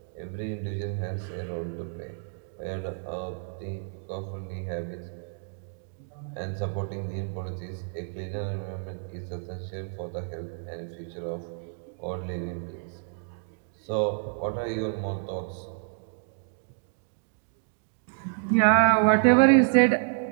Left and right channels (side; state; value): left; silent; digital silence